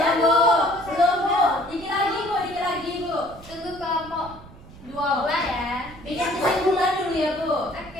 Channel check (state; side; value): noise; right; rumble, 19 dB below the sound